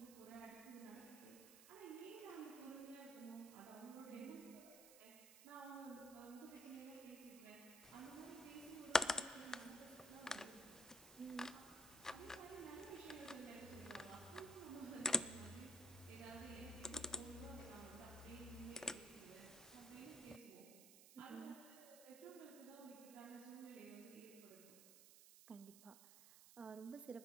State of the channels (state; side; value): noise; right; hiss, 15 dB below the sound